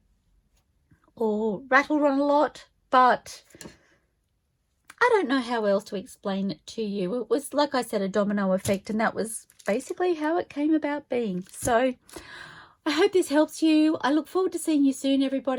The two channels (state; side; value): identical; both; correlation 1.00